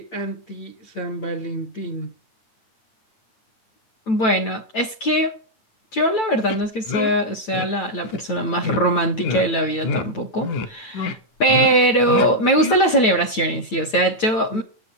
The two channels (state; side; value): late; right; 9.1 ms